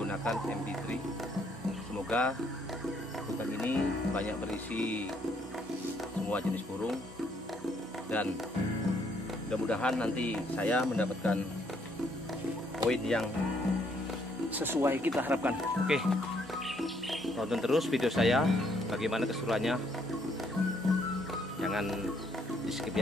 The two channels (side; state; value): both; normal; correlation 0.69